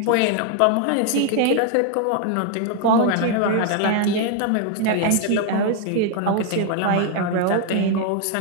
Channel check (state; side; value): different; both; correlation 0.01